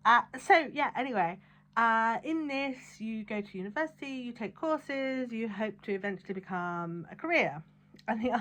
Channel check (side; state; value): both; identical; correlation 1.00